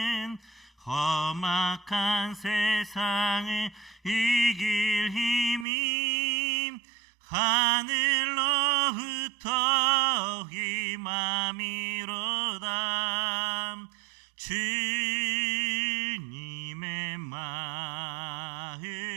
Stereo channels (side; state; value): left; drops out; at 5.7 s